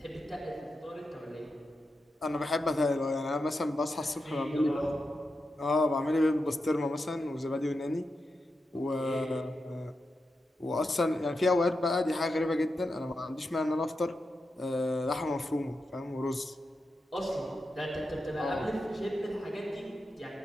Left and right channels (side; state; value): both; normal; correlation 0.88